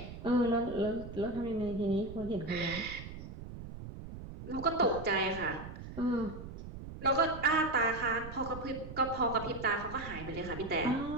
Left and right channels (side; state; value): right; noise; rumble, 11 dB below the sound